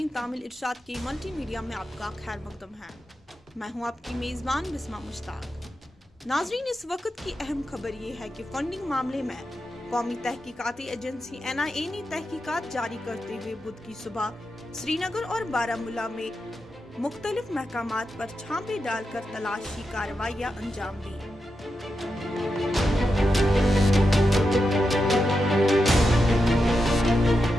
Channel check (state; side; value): normal; both; correlation 0.88